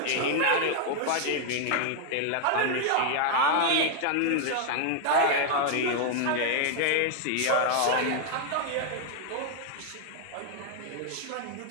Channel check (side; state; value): both; different; correlation 0.00